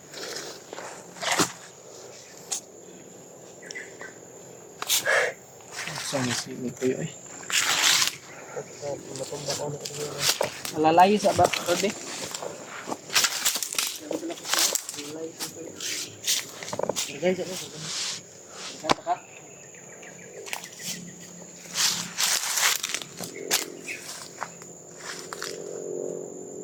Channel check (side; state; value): both; identical; correlation 1.00